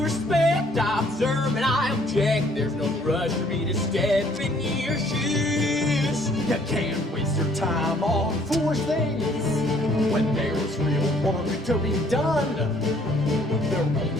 respect, I observe and I object. There's no rush for me to step in your shoes. You can't waste your time on foolish things when there's real work to be done. There won't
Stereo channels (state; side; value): normal; both; correlation 0.61